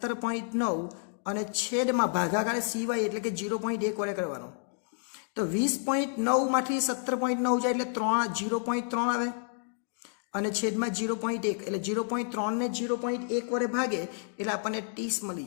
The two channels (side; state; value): right; silent; 58 dB below the other